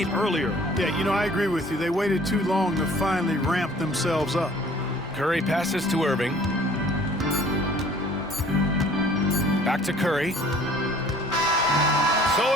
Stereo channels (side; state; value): both; normal; correlation 0.52